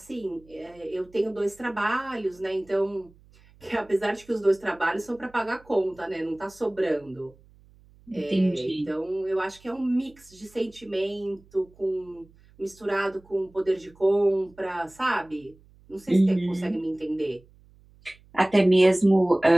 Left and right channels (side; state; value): right; noise; hum, 27 dB below the sound